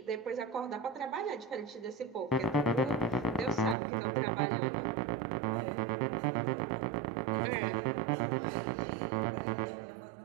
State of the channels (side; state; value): left; drops out; at 3.8 s